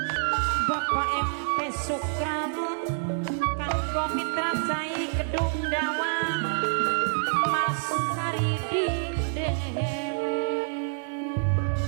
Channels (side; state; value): left; silent; digital silence